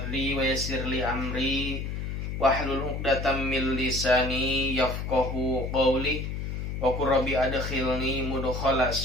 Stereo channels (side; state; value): left; noise; hum, 4 dB below the sound